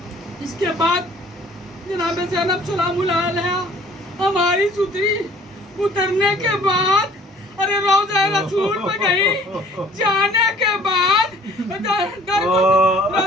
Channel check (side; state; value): both; normal; correlation 0.53